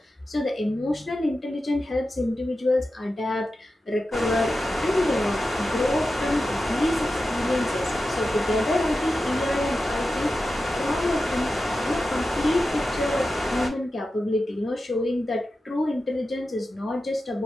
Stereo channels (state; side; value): normal; both; correlation 0.92